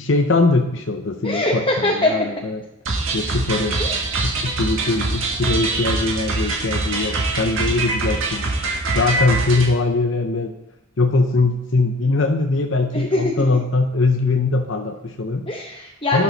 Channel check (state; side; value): normal; both; correlation 0.46